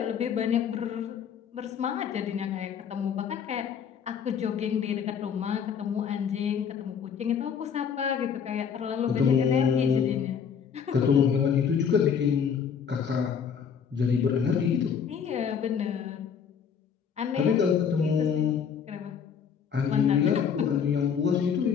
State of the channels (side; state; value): right; quieter; 7.2 dB